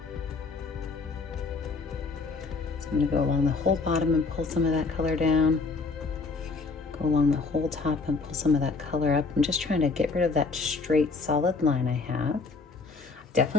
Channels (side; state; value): right; quieter; 4.2 dB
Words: I'm going to go along the whole bottom and pull some of that color down. Go along the whole top and pull some of that color up. I'm just trying to get rid of that straight solid line I have.